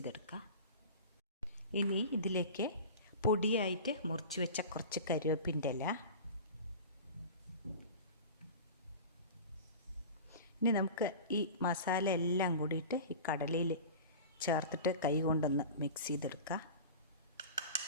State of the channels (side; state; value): both; inverted; correlation -0.34